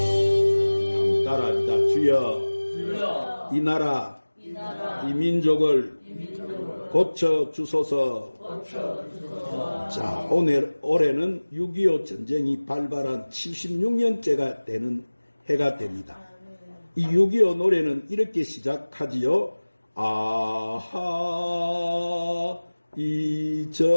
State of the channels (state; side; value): inverted; both; correlation -1.00